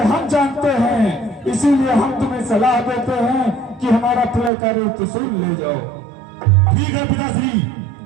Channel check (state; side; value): drops out; left; at 4.5 s